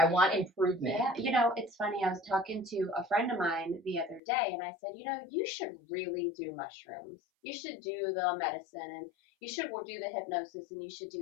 want improvement. Yeah, it's funny. I was talking to a friend of mine the other day, and I said, you should really do mushrooms. You should do the medicine, and you should do the hypnosis, and you should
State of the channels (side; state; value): right; drops out; at 4.2 s